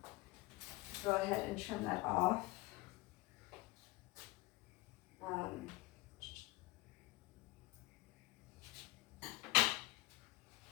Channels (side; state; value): right; quieter; 21.3 dB